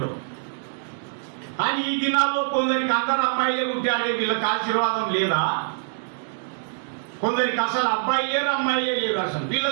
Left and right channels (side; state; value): left; silent; digital silence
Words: కానీ ఈ దినాల్లో కొందరికి అందరు అమ్మాయిలే పుట్టారే, వీళ్ళకి ఆశీర్వాదం లేదా? కొందరికి అసలు అబ్బాయి లేరు, అమ్మాయిలే లేరు. అసలు వీళ్ళ